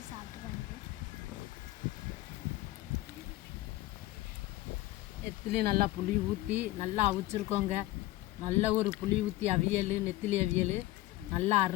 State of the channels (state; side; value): quieter; right; 17.3 dB